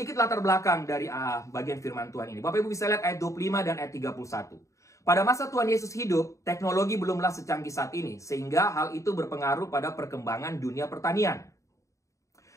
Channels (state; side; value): late; right; 0.15 ms